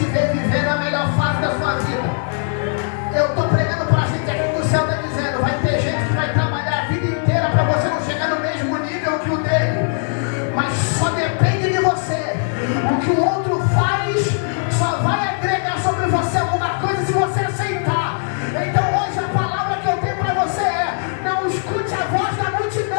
ver viver a melhor fase da sua vida. Eu estou pregando para a gente aqui que o céu está dizendo, vai ter gente que vai trabalhar a vida inteira para você não chegar no mesmo nível que o dele, mas só depende de você. O que o outro faz só vai agregar sobre você alguma coisa se você aceitar. Então hoje a palavra que eu tenho para você é: não escute a voz da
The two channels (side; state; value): right; silent; digital silence